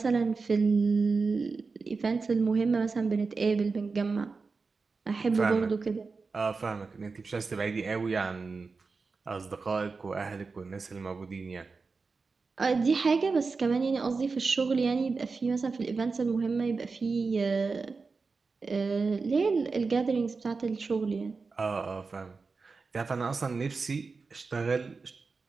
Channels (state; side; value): quieter; left; 4.4 dB